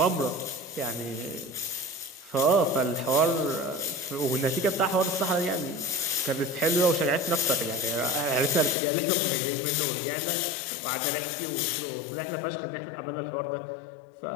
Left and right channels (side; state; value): right; drops out; at 8.8 s